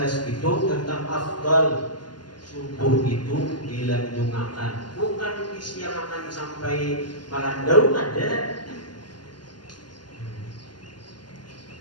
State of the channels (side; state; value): right; late; 0.71 ms